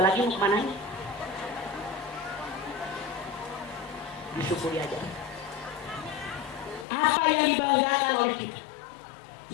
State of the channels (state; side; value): drops out; right; at 6.9 s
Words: mau kemana? Disyukuri aja. Apa yang dibanggakan oleh kita?